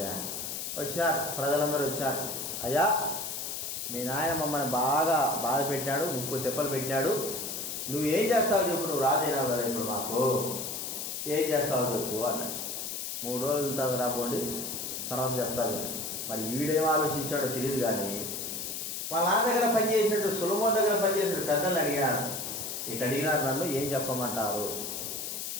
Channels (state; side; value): noise; left; hiss, 5 dB below the sound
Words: వచ్చారు ప్రజలందరూ వచ్చారు. అయ్యా, మీ నాయన మమ్మల్ని బాగా బాధ పెట్టాడు, 30 తెప్పలు పెట్టాడు, నువ్వేం చేస్తావో చెప్పు, నువ్వు రాజైనావు కదా ఇప్పుడు మాకు, ఏం చేస్తావో చెప్పు అన్నాడు. 3 రోజుల తర్వాత రాబోండి, తర్వాత చెప్తాను. మరి ఈడేం ఆలోచించాడో తెలియదు, కానీ వాళ్ళ నాన్న దగ్గర పనిచేసినట్టు సొలొమోను దగ్గర పనిచేసినట్టు పెద్దల్ని అడిగాడు. ఇటు అడిగినారు, నన్ను ఏం చెప్పమంటారు?